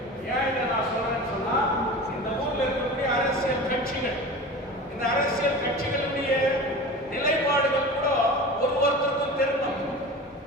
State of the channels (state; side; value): normal; both; correlation 0.33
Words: கட்சிகள், இந்த அரசியல் கட்சிகளுடைய நிலைப்பாடுகள் கூட ஒருவருக்கும் தெரியணும்.